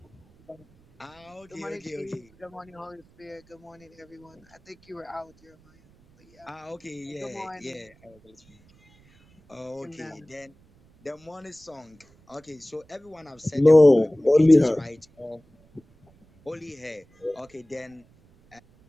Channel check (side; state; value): right; noise; rumble, 30 dB below the sound